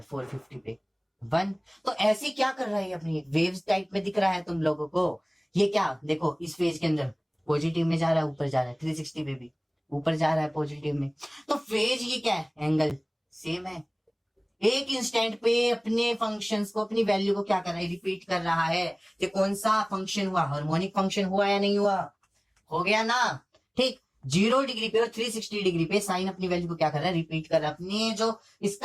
450 पे 1। तो ऐसे क्या कर रहा है अपनी वेव्स टाइप में दिख रहा है तुम लोगों को। ये क्या देखो, इस फेज के अंदर पॉजिटिव में जा रहा है, ऊपर जा रहा है, 360 पे भी ऊपर जा रहा है पॉजिटिव में। तो फेज ये क्या है, एंगल सेम है। एक इंस्टेंट पे अपने फंक्शंस को, अपनी वैल्यू को क्या कर रहा है, रिपीट कर रहा है। कि कौन सा फंक्शन हुआ, हार्मोनिक फंक्शन हुआ या नहीं हुआ, हो गया ना। ठीक, 0 डिग्री पे और 360 डिग्री पे साइन अपनी वैल्यू को क्या कर रहा है, रिपीट कर रहा है। अपने जो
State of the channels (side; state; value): both; identical; correlation 1.00